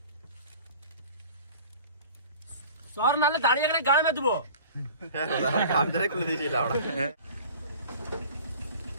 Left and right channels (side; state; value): both; inverted; correlation -0.44